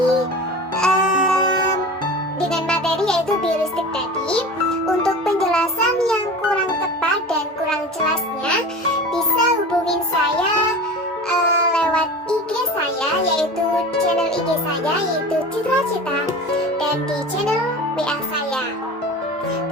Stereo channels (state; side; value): normal; both; correlation 0.34